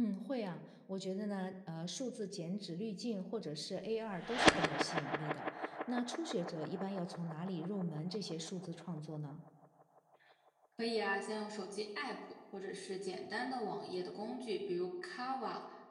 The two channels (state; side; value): identical; both; correlation 1.00